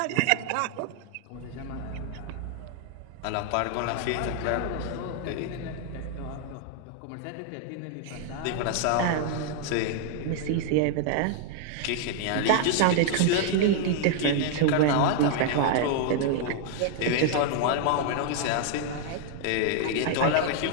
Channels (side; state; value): both; different; correlation 0.00